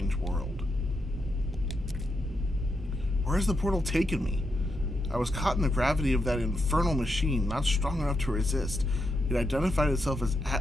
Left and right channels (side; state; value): both; normal; correlation 0.83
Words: world. Where has the portal taken me? I was caught in the gravity of that infernal machine, not strong enough to resist. It identified itself as